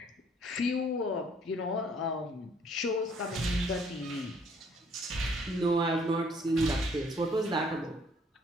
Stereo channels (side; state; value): both; normal; correlation 0.62